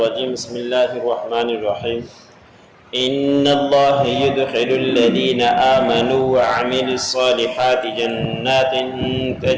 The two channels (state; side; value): identical; both; correlation 1.00